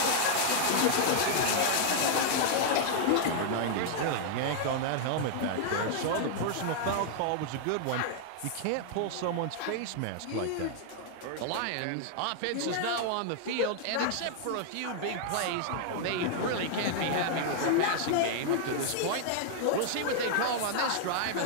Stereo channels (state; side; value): different; both; correlation -0.01